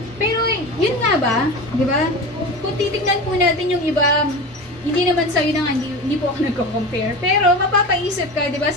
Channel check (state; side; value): normal; both; correlation 0.28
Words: Pero, yun nga ba? Diba? Kung titignan po natin yung iba, hindi naman sa'yo na nga, hindi po ako nagko-compare. Pero, mapapaisip ka, diba?